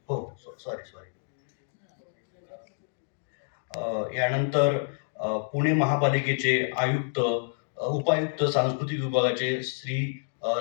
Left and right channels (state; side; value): silent; right; digital silence